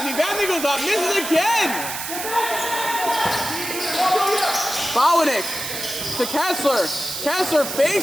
Vabney goes up, misses again. Bowanek to Kessler. Kessler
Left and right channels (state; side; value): noise; right; hiss, 6 dB below the sound